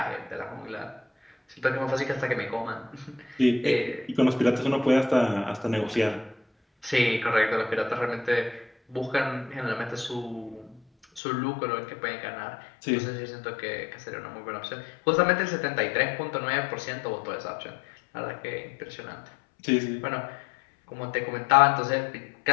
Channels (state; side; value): drops out; right; at 11.2 s